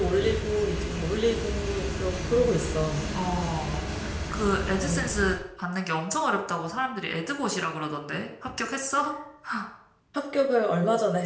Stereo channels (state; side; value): identical; both; correlation 1.00